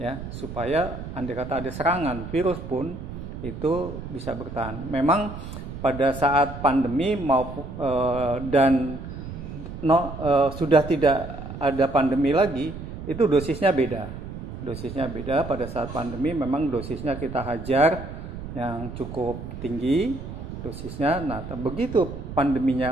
supaya andai kata ada serangan virus pun itu bisa bertahan. Memang pada saat pandemi sudah tidak ada pandemi lagi, itu dosisnya beda. Pada saat pandemi memang dosisnya kita hajar yang cukup tinggi dosisnya. Nah, begitu pandeminya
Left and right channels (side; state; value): right; noise; rumble, 9 dB below the sound